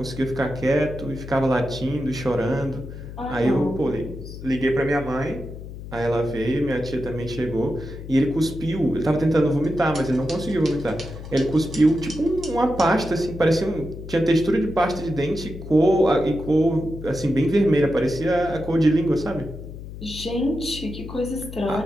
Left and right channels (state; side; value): noise; left; hum, 12 dB below the sound